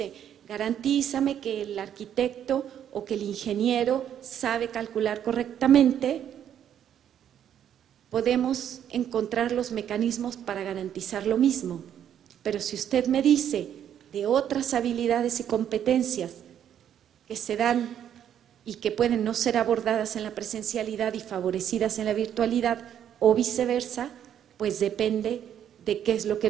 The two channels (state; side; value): quieter; left; 9.8 dB